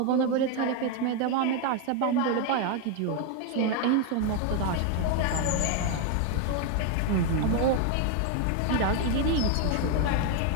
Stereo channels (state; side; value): different; both; correlation 0.01